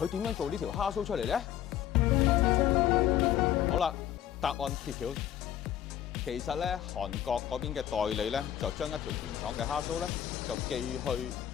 點樣做呢條蝦蘇出嚟咧？好啦，答案揭曉。其實咧，韓國嗰邊嘅代理咧，就將一條原廠嘅蝦蘇咧，就寄去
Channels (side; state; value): right; quieter; 11.1 dB